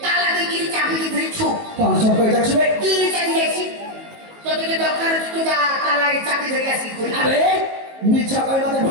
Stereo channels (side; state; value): left; late; 19 ms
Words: তালা দিয়ে চাবি দিয়ে ছো কোন সব কই যাচ্ছে দিয়ে চালিয়েছি তোকে দরকার তো যা তালা চাবি ধরে আসি খুলে আরে মিছা কই মতে